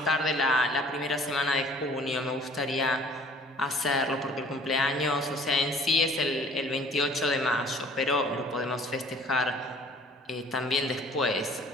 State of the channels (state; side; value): normal; both; correlation 0.53